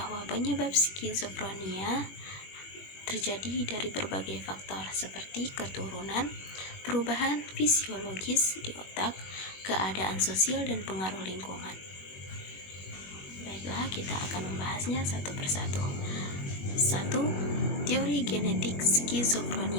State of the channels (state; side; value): late; right; 21 ms